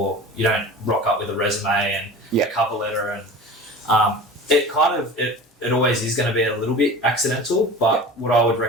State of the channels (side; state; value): both; normal; correlation 0.36